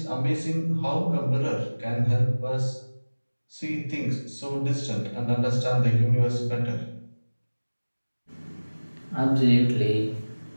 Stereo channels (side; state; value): both; inverted; correlation -1.00